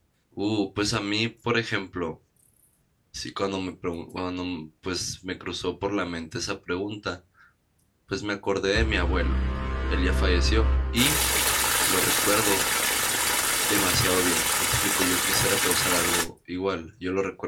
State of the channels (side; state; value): both; identical; correlation 1.00